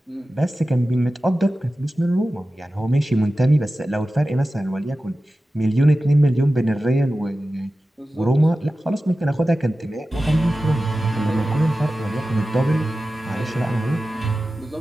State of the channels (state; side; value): normal; both; correlation 0.94